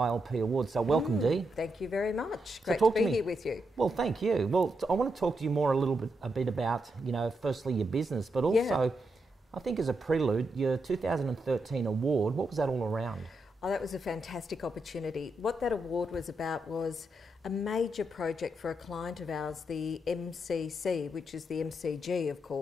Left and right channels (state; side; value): normal; both; correlation 0.83